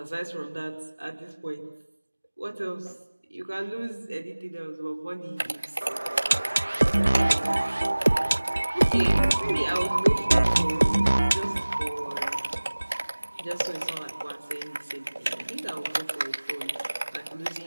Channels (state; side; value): inverted; both; correlation -1.00